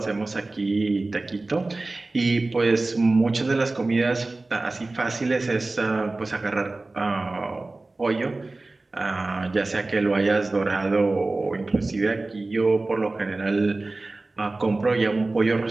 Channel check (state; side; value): quieter; left; 3.2 dB